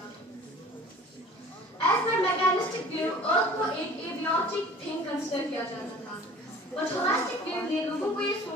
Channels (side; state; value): both; normal; correlation 0.46